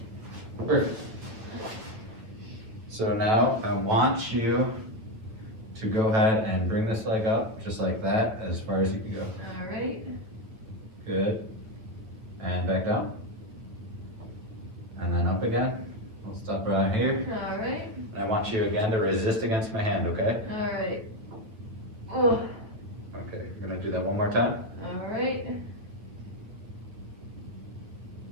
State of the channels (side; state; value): left; late; 9.1 ms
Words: Perfect. So now I want you to go ahead and bring this leg up, just like that, as far as you can go. Alright. Good. And back down. And then up again. We'll stop right here. Alright. And I want you again to resist against my hand, okay? Alright. Oh. Okay, we're gonna do that one more time. Alright.